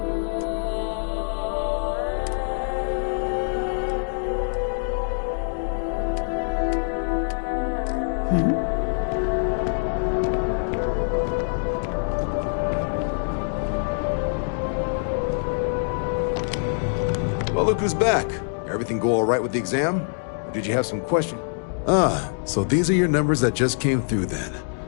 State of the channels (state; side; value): silent; right; digital silence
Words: Well, look who's back. Everything go all right with the exam? Or did you have some question? Ah, so these are your numbers that just came through then.